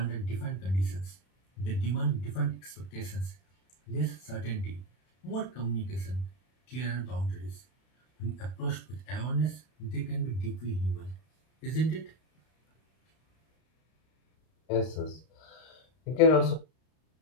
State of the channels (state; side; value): late; right; 32 ms